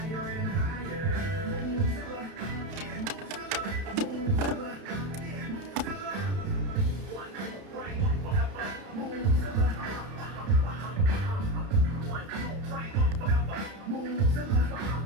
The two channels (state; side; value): late; left; 31 ms